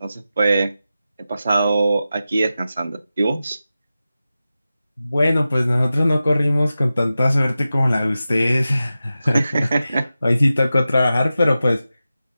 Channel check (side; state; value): both; inverted; correlation -0.93